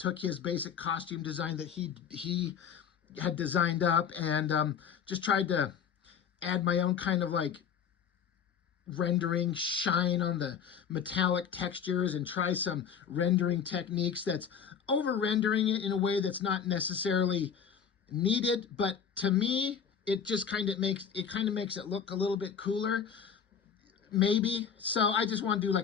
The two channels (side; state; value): right; quieter; 7.3 dB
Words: his basic costume design that he had designed up and just tried to add my own kind of like rendering, shine on the metallic textures, and try some rendering techniques that's over rendering it in a way that's not necessarily needed, but to me it just kind of makes it look a little bit cooler. Maybe. So I just want to do